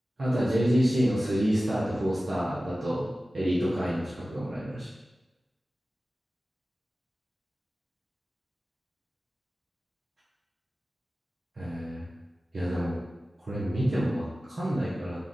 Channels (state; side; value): normal; both; correlation 0.96